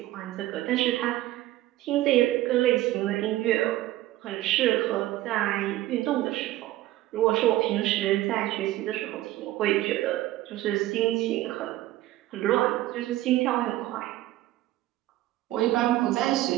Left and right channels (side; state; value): left; quieter; 15.6 dB